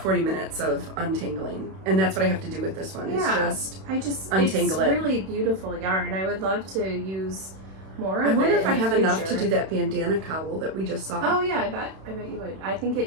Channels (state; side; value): late; left; 31 ms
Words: 40 minutes of untangling. And that's what I have to do with this one, is just untangle it's it. really beautiful yarn. I would love to use more of it. I wonder if I in the have enough to future. do that bandana cowl that we just saw. Oh yeah, I bet you would. I think